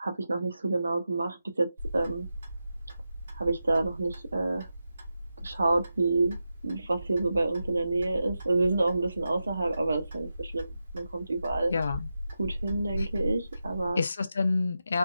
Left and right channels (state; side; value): inverted; both; correlation -0.90